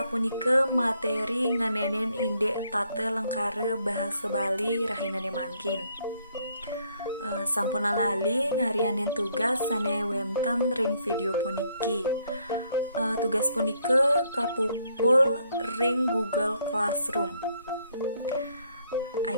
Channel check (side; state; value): both; inverted; correlation -0.69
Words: punike materi nganenen indek tate lengkare bahasa Bali rahinane mangkin. Sampun lali ngarianin tugas sane wenten ring video puniki. Tugas punike kapupul ring Google Classroom.